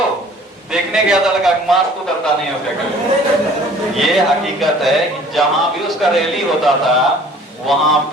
देखने गया था, लगा मास्क तो करता नहीं है उसका। ये हकीकत है कि जहां भी उसका रैली होता था वहां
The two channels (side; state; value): both; normal; correlation 0.51